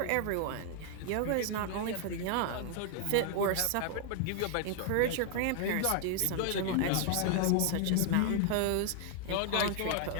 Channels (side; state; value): both; different; correlation 0.00